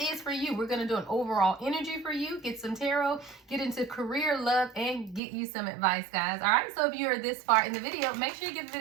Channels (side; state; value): left; drops out; at 5.2 s